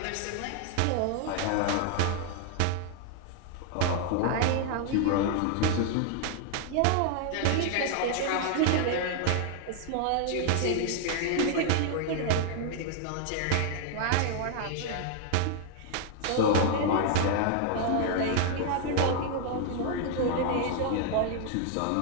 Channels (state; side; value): different; both; correlation 0.00